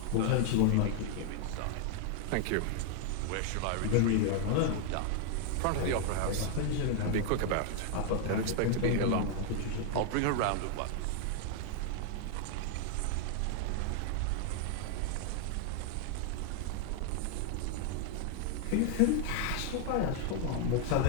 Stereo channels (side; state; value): both; different; correlation 0.00